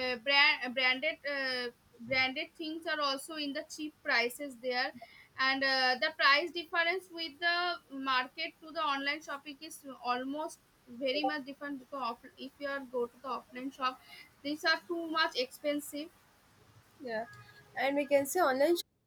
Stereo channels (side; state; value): both; identical; correlation 1.00